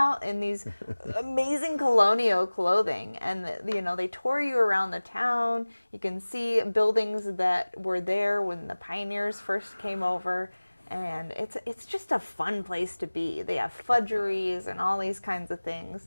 in these amazing colonial clothing, and you know, they tour you around the town. You can see buildings that were there when the pioneers first came over. And it's just a fun place to be. They have fudgeries and all these kinds of things.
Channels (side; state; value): both; inverted; correlation -1.00